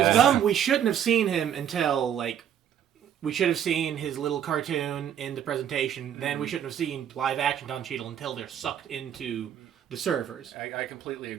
dumb. We shouldn't have seen him until like. We should have seen his little cartoon in the presentation. Then we shouldn't have seen live action Don Cheadle until they're sucked into the servers. I completely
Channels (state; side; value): quieter; left; 9.4 dB